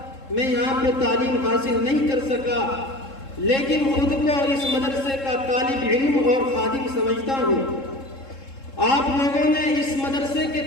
میں یہاں پہ تعلیم حاصل نہیں کر سکا، لیکن خود کو اس مدرسے کا طالب علم اور خادم سمجھتا ہوں۔ آپ لوگوں نے اس مدرسے کے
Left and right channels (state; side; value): late; right; 3.7 ms